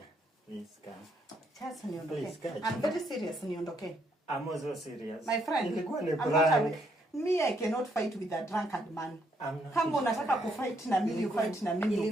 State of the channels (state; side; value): normal; both; correlation 0.73